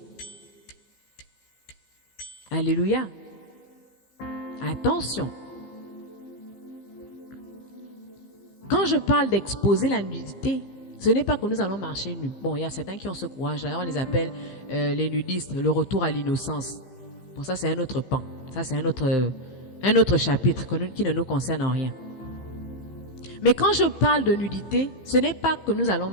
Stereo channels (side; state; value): right; late; 15 ms